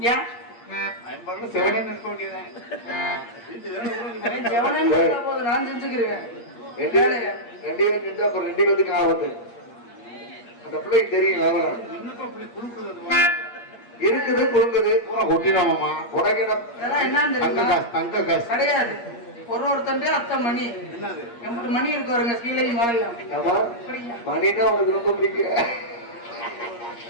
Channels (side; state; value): right; late; 8.5 ms